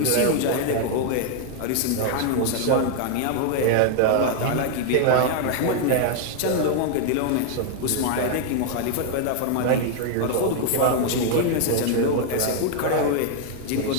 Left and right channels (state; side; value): different; both; correlation 0.00